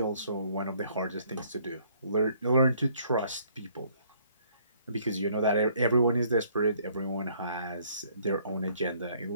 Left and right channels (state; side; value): inverted; both; correlation -0.63